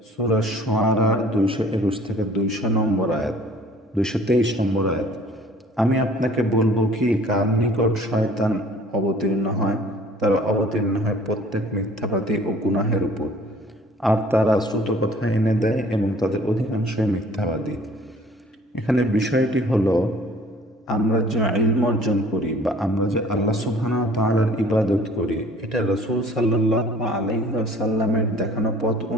সূরা শুআরার 221 থেকে 200 নম্বর আয়াত, 223 নম্বর আয়াত, আমি আপনাকে বলবো কি কার নিকট শয়তান অবতীর্ণ হয়? তারা অবতীর্ণ হয় প্রত্যেক মিথ্যাবাদী ও গুনাহের উপর। আর তারা শ্রুত কথা এনে দেয় এবং তাদের অধিকাংশই মিথ্যাবাদী। এখানে বিষয়টি হলো, আমরা যে ইলম অর্জন করি বা আমরা যে আল্লাহ সুবহানাহু ওয়া তাআলার ইবাদত করি, এটা রাসূল সাল্লাল্লাহু আলাইহি ওয়াসাল্লামের দেখানো পথ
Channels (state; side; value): normal; both; correlation 0.52